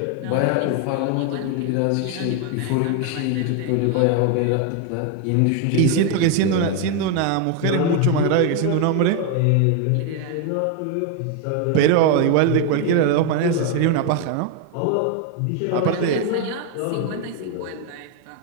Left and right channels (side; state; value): both; different; correlation 0.01